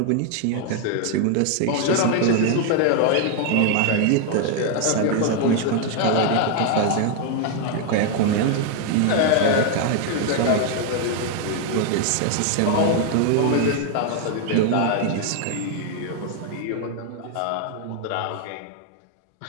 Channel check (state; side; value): different; both; correlation 0.00